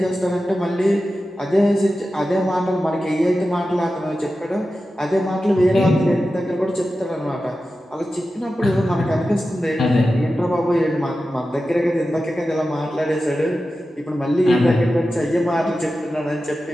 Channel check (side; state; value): both; normal; correlation 0.93